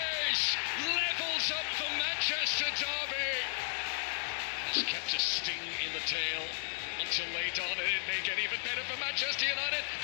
levels up the Manchester derby. Has kept a sting in the tail until late on, and it may get even better for Manchester United.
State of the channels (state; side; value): silent; right; 55 dB below the other